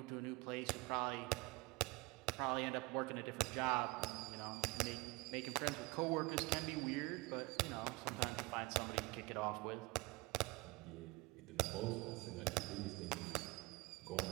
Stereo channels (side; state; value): left; quieter; 24.1 dB